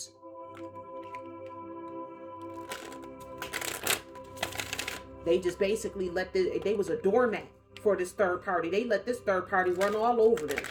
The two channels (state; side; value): identical; both; correlation 1.00